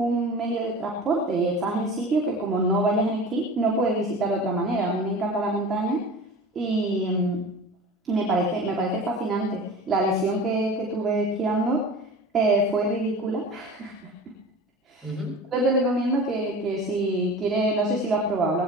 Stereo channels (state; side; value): normal; both; correlation 0.37